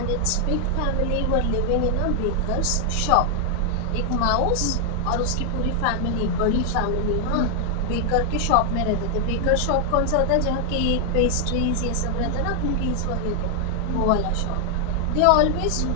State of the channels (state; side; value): different; both; correlation 0.00